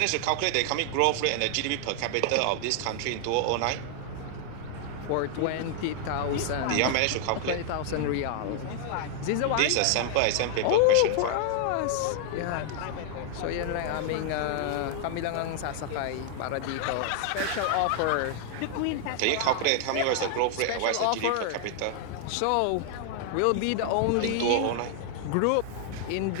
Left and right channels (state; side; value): different; both; correlation 0.00